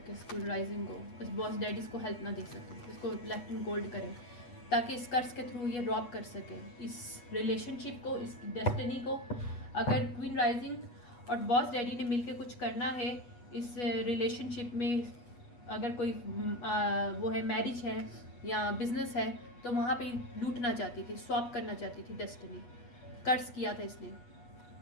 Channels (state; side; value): late; right; 8.3 ms